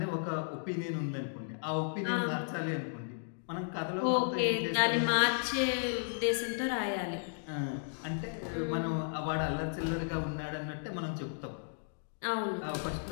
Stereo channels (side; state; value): right; silent; digital silence